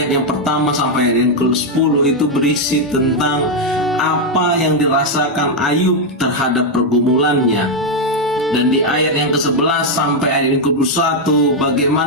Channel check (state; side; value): normal; both; correlation 0.01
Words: yang pertama sampai ayat yang ke-10 itu berisi tentang apa yang dirasakan Ayub terhadap pergumulannya. Dan di ayat yang ke-11 sampai ayat yang ke-21